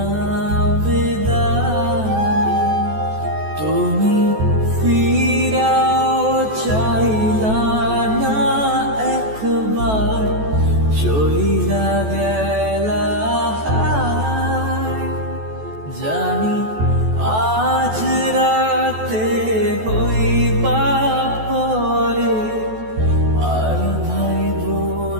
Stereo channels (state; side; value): late; left; 14 ms